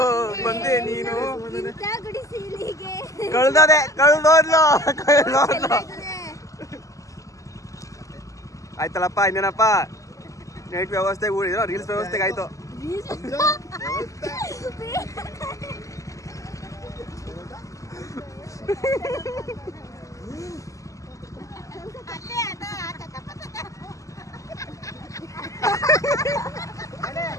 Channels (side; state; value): right; late; 0.16 ms